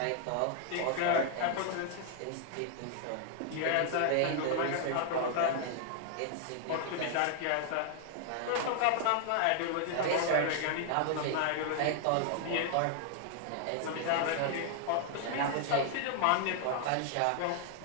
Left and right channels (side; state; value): both; different; correlation 0.00